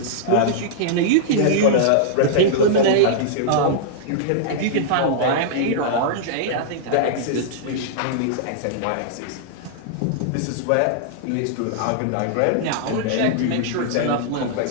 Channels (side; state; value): both; different; correlation -0.02